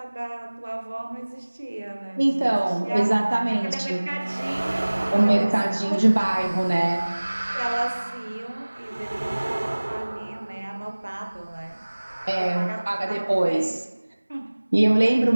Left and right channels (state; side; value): inverted; both; correlation -1.00